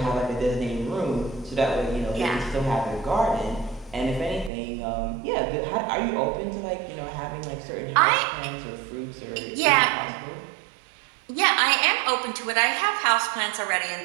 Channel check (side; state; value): left; drops out; at 4.5 s